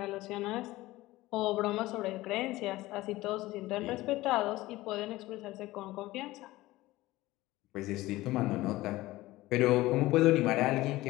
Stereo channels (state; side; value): quieter; right; 18.1 dB